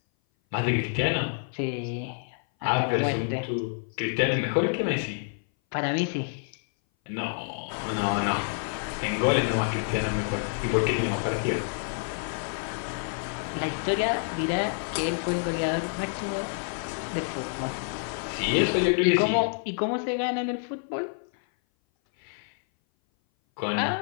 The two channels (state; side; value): silent; right; 57 dB below the other